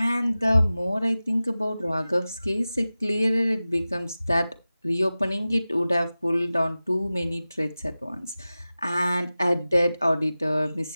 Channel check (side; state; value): both; inverted; correlation -0.96